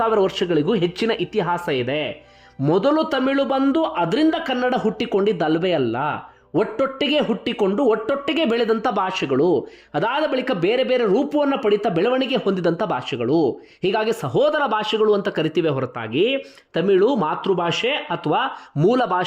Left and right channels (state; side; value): identical; both; correlation 1.00